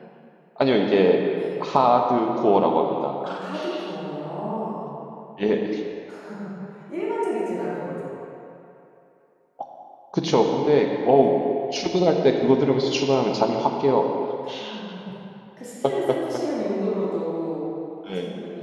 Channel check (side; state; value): both; identical; correlation 1.00